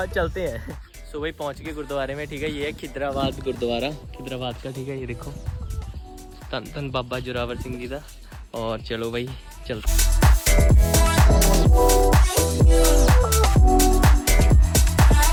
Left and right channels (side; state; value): both; identical; correlation 1.00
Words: चलते हैं। सो भाई पहुँच गए गुरुद्वारे में, ठीक है। ये है खिदराबाद गुरुद्वारा, खिदराबाद का, ठीक है। ये देखो धन धन बाबा जोरावर सिंह जी का। और चलो भाई चलते।